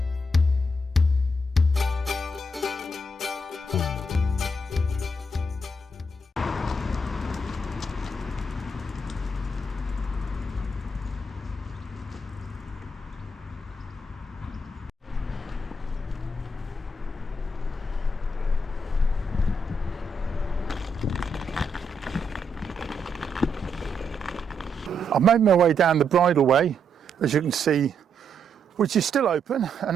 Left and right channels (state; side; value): normal; both; correlation 0.78